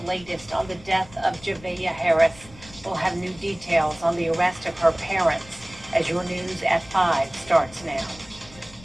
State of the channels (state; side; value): noise; left; rumble, 21 dB below the sound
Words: latest on the death of Javea Harris. We'll have new details on the arrest of her parents as your news at 5 starts now.